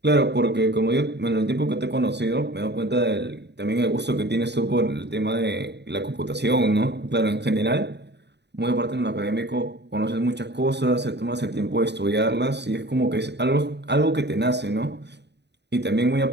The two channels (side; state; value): left; late; 0.50 ms